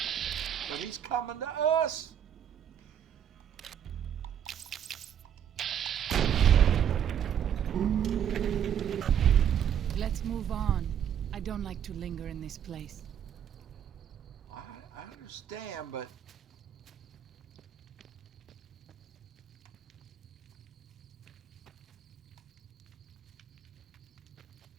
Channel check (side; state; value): left; quieter; 9.1 dB